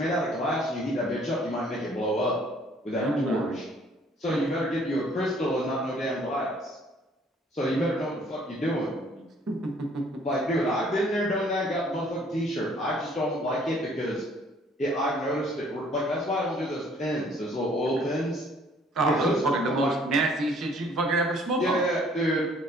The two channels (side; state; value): both; normal; correlation 0.59